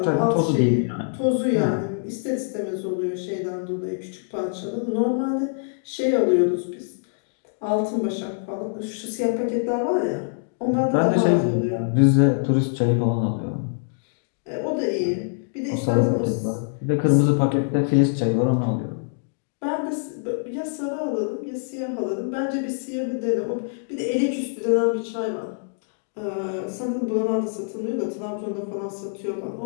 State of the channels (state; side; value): silent; right; digital silence